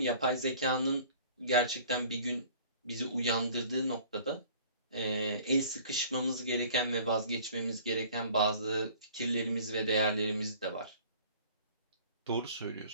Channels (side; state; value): both; inverted; correlation -0.50